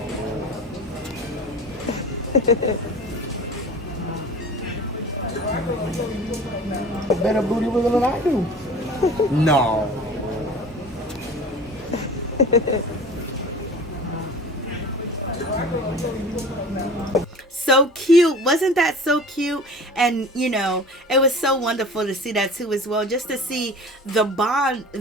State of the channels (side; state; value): both; normal; correlation 0.40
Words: Better booty wiggle than I do. No. So cute. Wasn't that so cute? And you know, it was so wonderful to see that too as well, just to see the bond